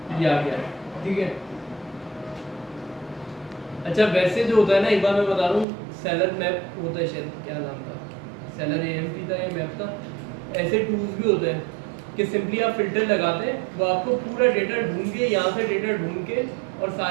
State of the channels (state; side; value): drops out; left; at 5.7 s